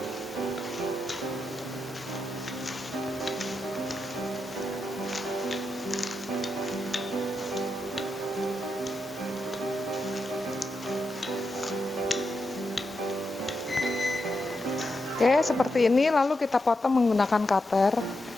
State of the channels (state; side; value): normal; both; correlation 0.85